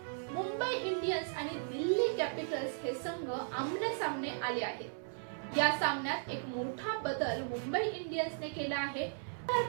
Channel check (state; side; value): silent; left; 54 dB below the other